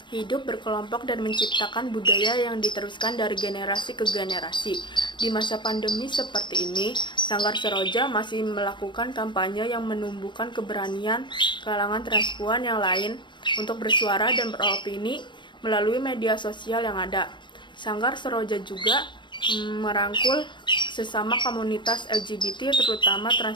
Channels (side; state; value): right; late; 0.23 ms